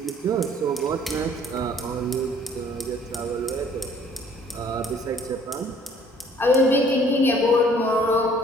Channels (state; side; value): normal; both; correlation 0.57